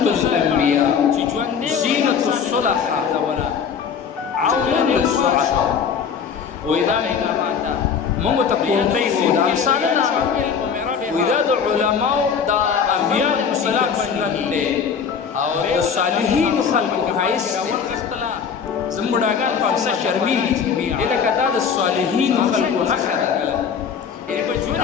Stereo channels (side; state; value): right; quieter; 6.7 dB